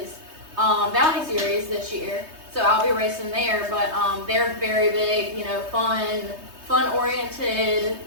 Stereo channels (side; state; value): left; late; 3.2 ms